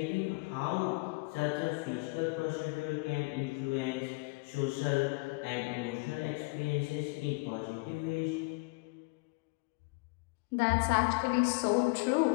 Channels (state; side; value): quieter; right; 28.1 dB